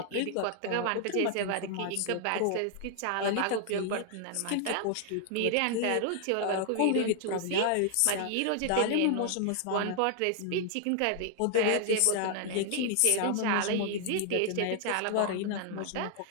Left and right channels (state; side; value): different; both; correlation 0.00